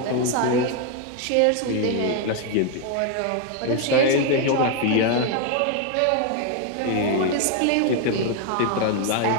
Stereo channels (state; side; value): different; both; correlation 0.01